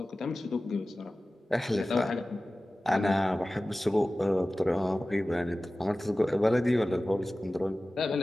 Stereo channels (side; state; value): both; normal; correlation 0.96